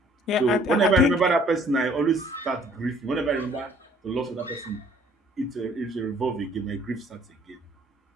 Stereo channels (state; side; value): normal; both; correlation 0.58